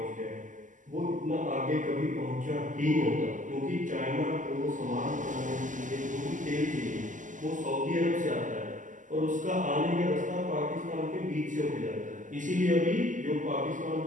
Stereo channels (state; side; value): late; left; 0.37 ms